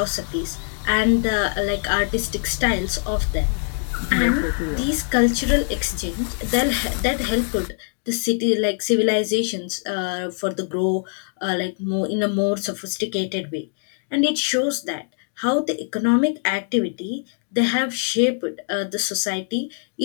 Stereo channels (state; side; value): silent; right; 63 dB below the other